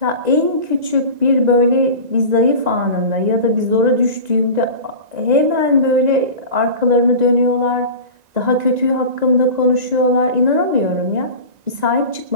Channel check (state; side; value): late; left; 1.9 ms